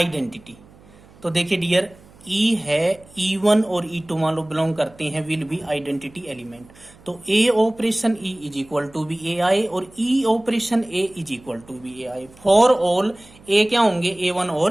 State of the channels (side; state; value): right; noise; hum, 25 dB below the sound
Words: तो देखिए डियर, ई है, E1 और E2 मान लो बिलोंग करते हैं, विल बी आइडेंटिटी एलिमेंट। तो A operation E is equal to B A I और E operation A is equal to B A I. For all A क्या होंगे, A1